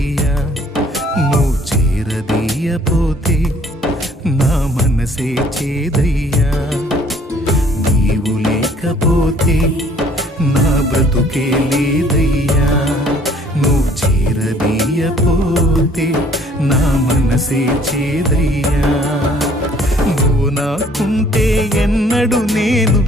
నువ్వు చేరదీయపోతే నా మనసే చేదయ్యా. నీవు లేకపోతే నా బ్రతుకే లేదయ్యా, నువ్వు చేరదీయపోతే నా మనసే చేదయ్యా. నువ్వు నాకుంటే ఎన్నడు నేను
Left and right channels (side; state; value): both; normal; correlation 0.58